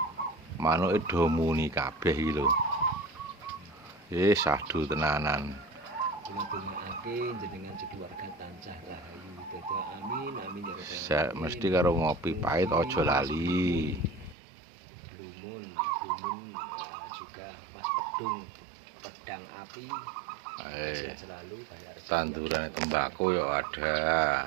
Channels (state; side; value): drops out; left; at 14.4 s